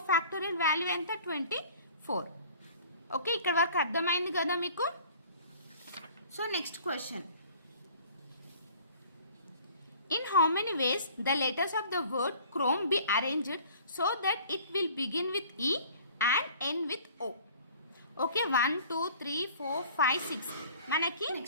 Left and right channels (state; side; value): inverted; both; correlation -0.49